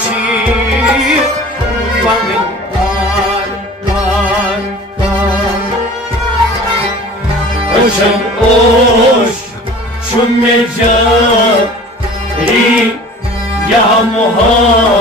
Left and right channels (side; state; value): both; normal; correlation 0.43